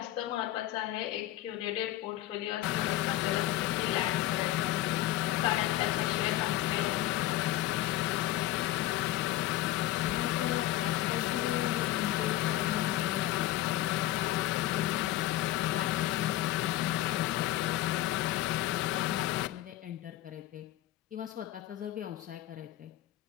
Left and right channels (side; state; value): right; quieter; 15.1 dB